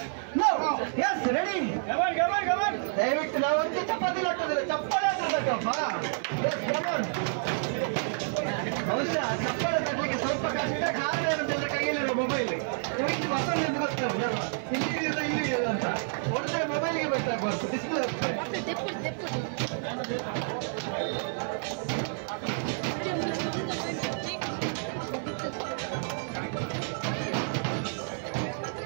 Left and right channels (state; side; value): silent; left; 58 dB below the other